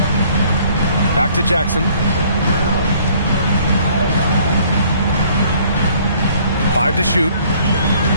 Back to Jackson. 5 to shoot.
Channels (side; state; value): both; inverted; correlation -0.59